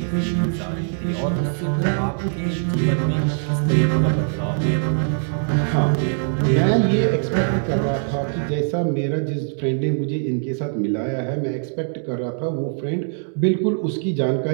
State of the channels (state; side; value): silent; left; 64 dB below the other